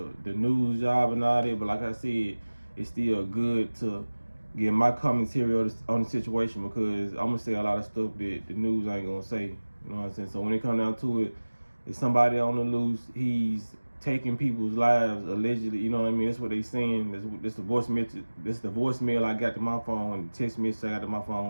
news job and all that. But like I said, it's still good to get my commentary on the situation because I'm gonna say a lot of stuff that the news ain't gonna say. You know what I'm saying? So when it comes down to it, if somebody on the loose, he's taking people's lives allegedly. You know what I mean? That's what they saying. That's the voice message. That's the voicemail I got to my phone. The text message I got to my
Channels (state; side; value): inverted; both; correlation -1.00